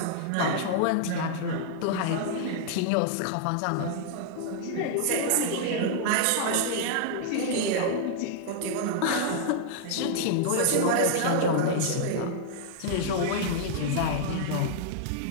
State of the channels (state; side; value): different; both; correlation -0.01